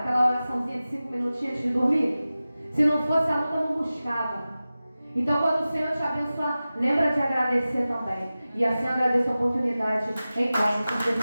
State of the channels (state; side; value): inverted; both; correlation -0.96